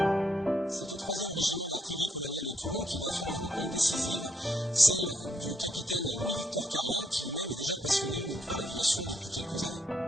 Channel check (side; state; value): both; normal; correlation 0.74